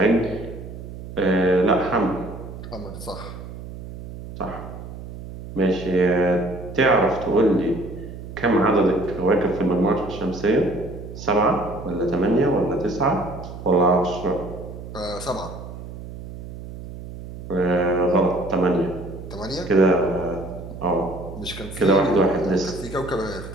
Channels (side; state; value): right; noise; hum, 12 dB below the sound